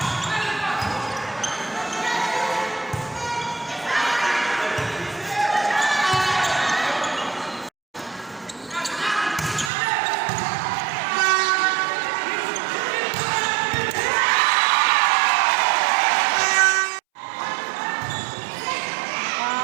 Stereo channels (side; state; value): left; drops out; at 9.7 s